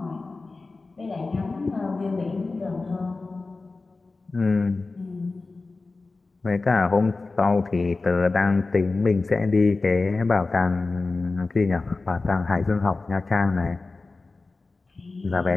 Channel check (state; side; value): quieter; right; 3.6 dB